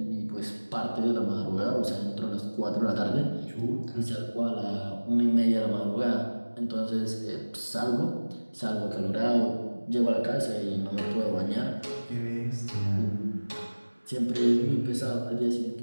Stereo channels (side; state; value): both; inverted; correlation -1.00